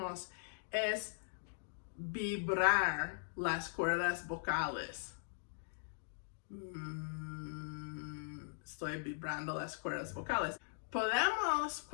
es vibrar las cuerdas vocales. Estoy vibrando las cuerdas vocales. Podemos,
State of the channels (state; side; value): silent; right; digital silence